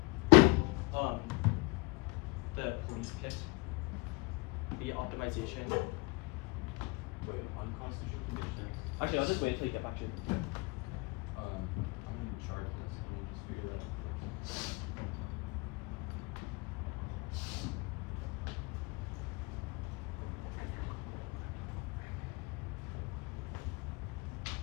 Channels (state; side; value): quieter; right; 24.8 dB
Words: The police pick. The optimization. Wait, unconstitutional conditions. Actually, I'll just wait until you get back to it. I'm in charge of this. Let me just figure that out first.